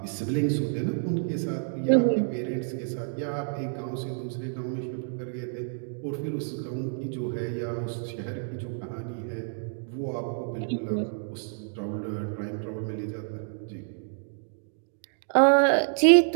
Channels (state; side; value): silent; left; digital silence